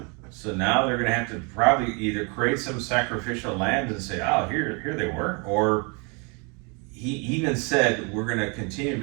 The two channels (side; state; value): left; quieter; 32.6 dB